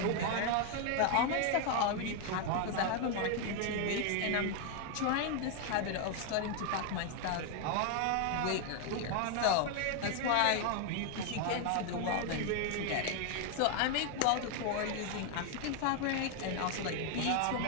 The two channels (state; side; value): different; both; correlation 0.01